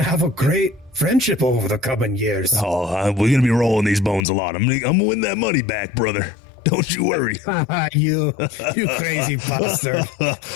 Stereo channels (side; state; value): right; drops out; at 4.2 s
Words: have a great friendship over the coming years. Oh, we're going to be rolling these bones a lot. I'm going to win that money back, brother. Don't you worry. You crazy bastard.